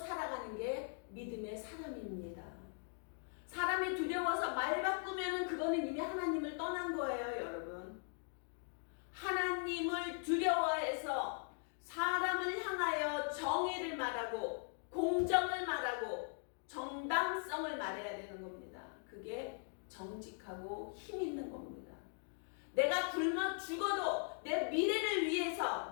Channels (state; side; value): silent; right; 51 dB below the other